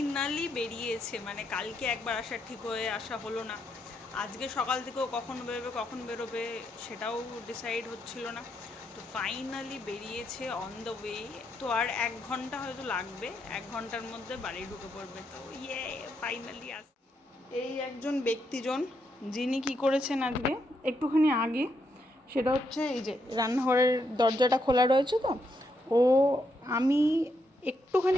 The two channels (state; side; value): normal; both; correlation 0.79